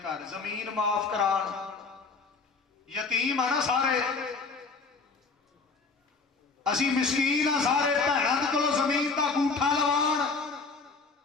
گھر زمین معاف کران، یتیم ہے نا سارے، اسی مسکین ہیں سارے، بہناں دے کولوں زمین دا گوٹھا لوان۔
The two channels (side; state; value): right; quieter; 4.4 dB